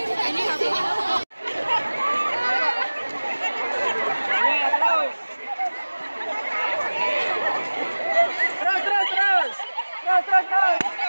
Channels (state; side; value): inverted; both; correlation -1.00